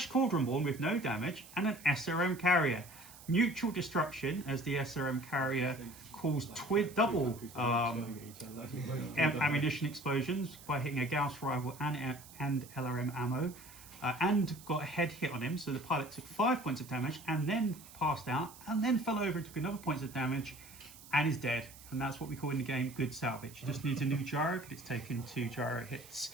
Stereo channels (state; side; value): noise; right; hiss, 19 dB below the sound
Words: Cauldron-born with no damage and an SRM carrier. Mutual destruction as the SRM carrier caused double ammunition explosions by hitting a Gauss rival and LRM ammo, and got a head hit on him. So the pilot took 5 points of damage and then passed out and then fell over and took another points of damage and is dead. And that's what we call in the game good salvage. He just needs a new gyro because it's taken 2 gyro hits.